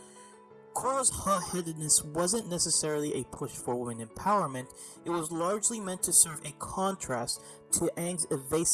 Korra's hot-headedness wasn't necessarily a push for women empowerment, it was largely meant to serve a contrast to Aang's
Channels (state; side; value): identical; both; correlation 1.00